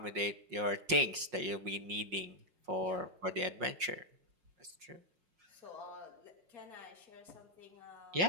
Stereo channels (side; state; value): left; late; 5.5 ms